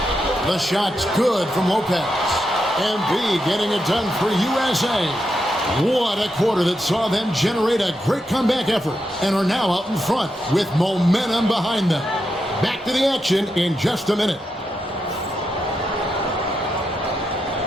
The shot's good from Lopez. MP getting it done for USA. What a quarter that saw them generate a great comeback effort and are now out in front with momentum behind them. Back to the action in just a minute.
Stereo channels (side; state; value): both; normal; correlation 0.85